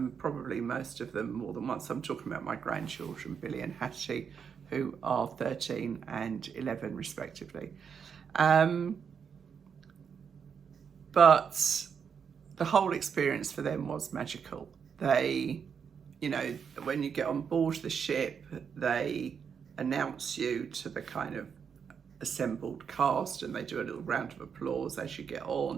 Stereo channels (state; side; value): quieter; left; 6.9 dB